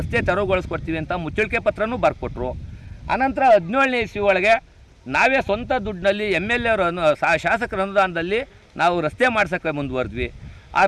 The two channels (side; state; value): both; identical; correlation 1.00